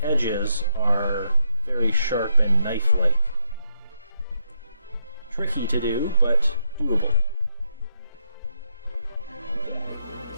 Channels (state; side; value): inverted; both; correlation -0.80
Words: edges are very sharp and knife-like. Tricky to do, but doable.